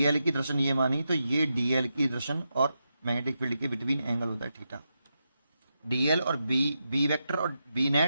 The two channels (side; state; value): both; inverted; correlation -0.86